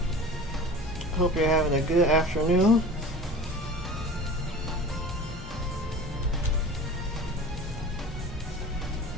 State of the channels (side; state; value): both; normal; correlation 0.38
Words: Hope you're having a good afternoon.